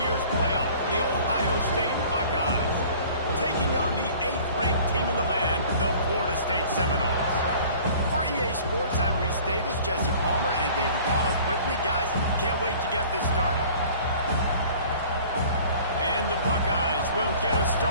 playoff, the Ohio State Buckeyes, taking on the 8th-ranked team in the land, the Florida State Seminoles. For EA Sports, I'm Reese Davis, Jesse Palmer, and David Powell with me. Guys, can't wait to get this started. And the Buckeyes will get us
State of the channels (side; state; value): both; inverted; correlation -0.48